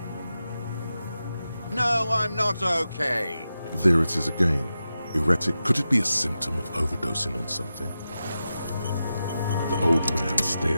No, I'm not okay. There it is again. Erratic. Could it be a symptom of overdosing on something? The old man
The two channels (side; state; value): both; inverted; correlation -0.91